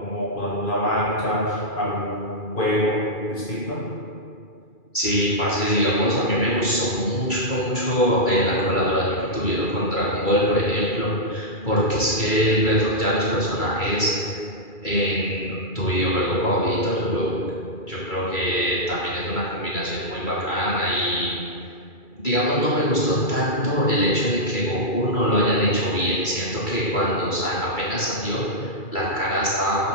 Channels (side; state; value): right; late; 2.3 ms